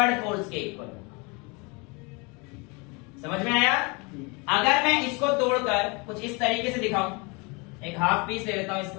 फोर्स के इक्वल। समझ में आया? अगर मैं इसको तोड़कर कुछ इस तरीके से दिखाऊं, एक हाफ पीस ले लेता हूं इसको,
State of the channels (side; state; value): right; quieter; 29.2 dB